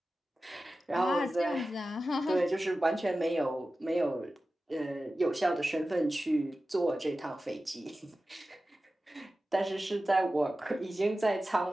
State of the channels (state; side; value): normal; both; correlation 0.94